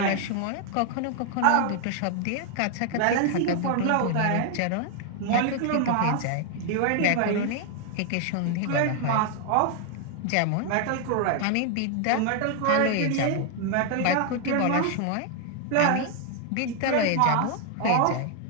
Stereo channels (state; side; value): different; both; correlation 0.00